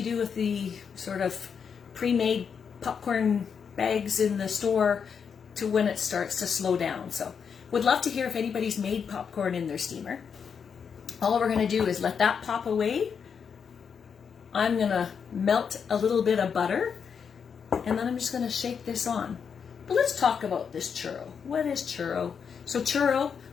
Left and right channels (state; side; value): quieter; right; 6.6 dB